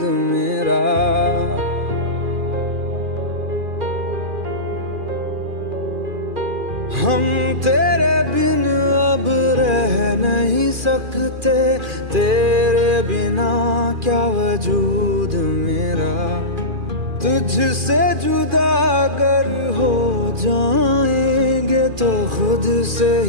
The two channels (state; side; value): late; left; 2.4 ms